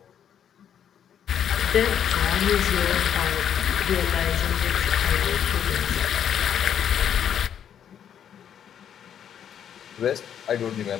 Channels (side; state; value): right; quieter; 9.1 dB